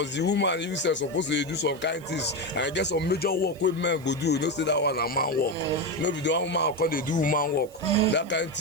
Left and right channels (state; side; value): noise; right; hiss, 25 dB below the sound